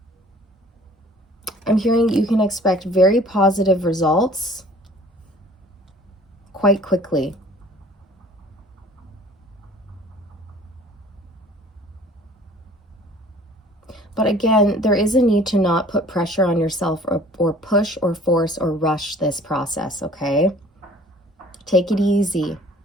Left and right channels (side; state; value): both; normal; correlation 0.51